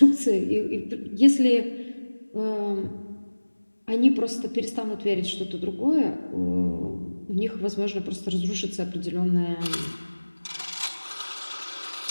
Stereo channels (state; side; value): inverted; both; correlation -1.00